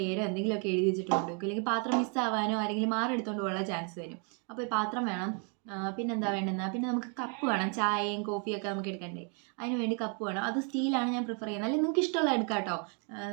എന്തെങ്കിലുമൊക്കെ എഴുതി വെച്ചിട്ട് കൊണ്ടുപോകും, അല്ലെങ്കിൽ പാത്രം മിസ്സാവാനോ ആരെങ്കിലും മാർക്ക് എടുത്തുകൊണ്ട് പോകാനുള്ള ചാൻസ് വരും. അപ്പോൾ ഈ പാത്രം വേണം. പിന്നെന്താ വേണ്ടുന്നത്, പിന്നെ നമുക്ക് കപ്പ് വേണം. ചായയും കോഫിയൊക്കെ നമുക്ക് എടുക്കണ്ടേ, അതിന് വേണ്ടി കപ്പ് വേണം. അത് സ്റ്റീലാണ് ഞാൻ പ്രിഫർ ചെയ്യുന്നത്. അല്ലെങ്കിൽ നിങ്ങൾക്ക് ഇഷ്ടമുള്ള എടുക്കാം കേട്ടോ.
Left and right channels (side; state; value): left; quieter; 38.7 dB